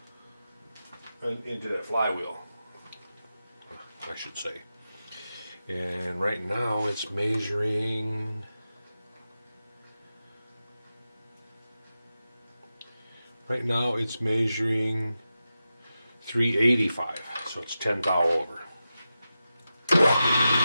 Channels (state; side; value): inverted; both; correlation -0.92